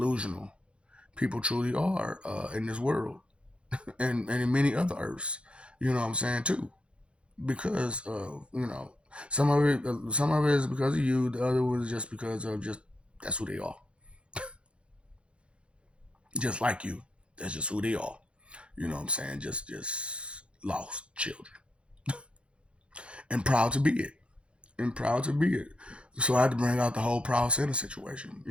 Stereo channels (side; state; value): left; late; 0.058 ms